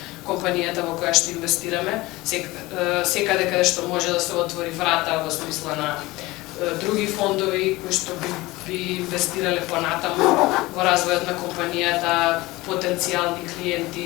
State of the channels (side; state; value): right; quieter; 20.3 dB